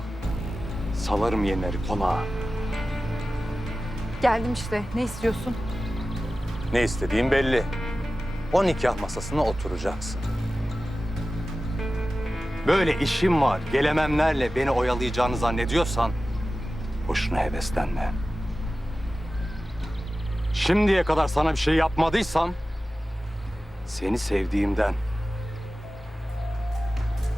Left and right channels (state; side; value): normal; both; correlation 0.95